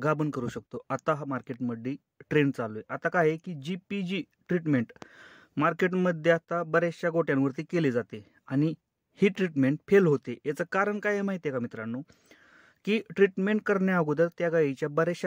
गाभण करू शकतो. आता हा मार्केटमध्ये ट्रेंड चालू आहे. आता काय आहे की GPG ट्रीटमेंट मार्केटमध्ये आता बऱ्याचशा गोट्यांवरती केली जाते आणि ही ट्रीटमेंट फेल होते. याचं कारण काय आहे माहिती आहे का मित्रांनो? की ट्रीटमेंट करण्या अगोदर त्या गाईच्या बऱ्याचशा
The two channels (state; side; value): identical; both; correlation 1.00